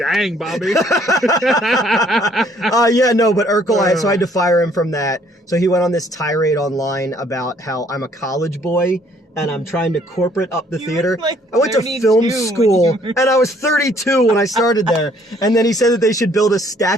Bobby. Yeah, no, but Urkel, so I had to fire him from that. So he went on this tirade online about how I'm a college boy and I'm trying to corporate up the You theater. were, like, I went to 32 film when school you were- and I was 32 when I started there. And then he said that they should build a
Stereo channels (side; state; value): both; normal; correlation 0.62